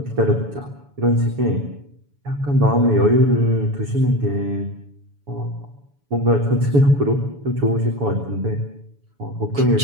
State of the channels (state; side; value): late; left; 7.0 ms